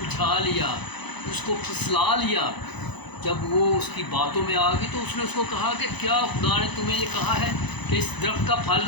لیا، اس کو پھسلا لیا۔ جب وہ اس کی باتوں میں آ گئی تو اس نے اس کو کہا کہ کیا خدا نے تمہیں یہ کہا ہے کہ اس درخت کا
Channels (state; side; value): late; right; 0.99 ms